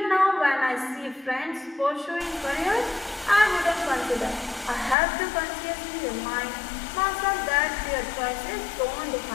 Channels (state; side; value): drops out; right; at 5.0 s